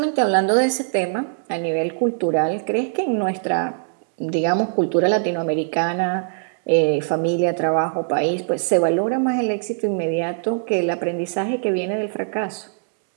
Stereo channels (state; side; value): silent; left; digital silence